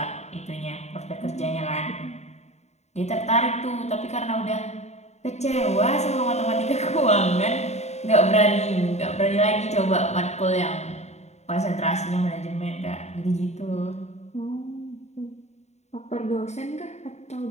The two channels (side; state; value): right; late; 0.32 ms